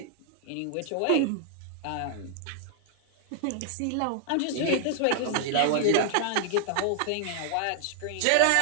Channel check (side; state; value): both; different; correlation 0.00